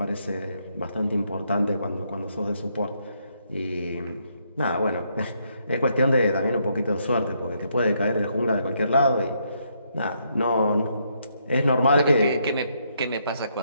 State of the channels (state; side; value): inverted; both; correlation -0.75